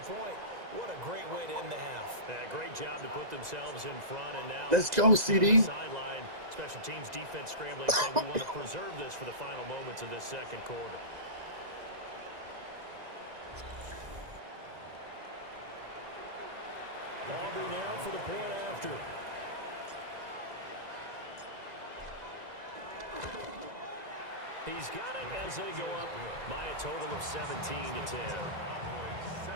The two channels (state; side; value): late; left; 2.0 ms